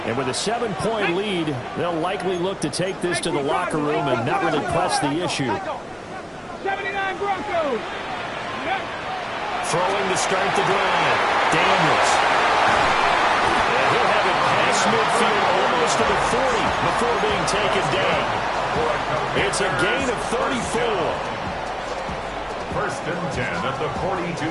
And with a 7-point lead, they'll likely look to take this to the locker room and not really press the issue. 79 Broncos. Throwing to start the drive. Daniels. And he'll have it past midfield almost to the 40 before being taken down. It's a gain of 34. 1st and 10 at the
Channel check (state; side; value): identical; both; correlation 1.00